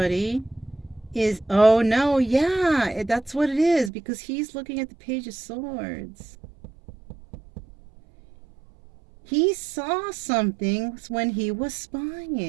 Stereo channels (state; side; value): drops out; left; at 3.9 s